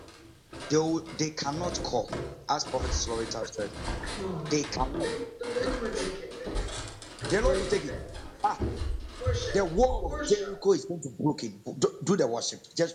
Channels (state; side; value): identical; both; correlation 1.00